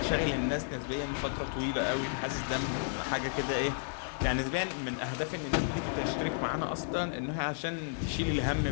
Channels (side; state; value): right; silent; digital silence